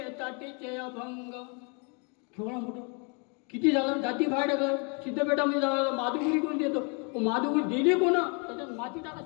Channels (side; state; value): right; quieter; 35.2 dB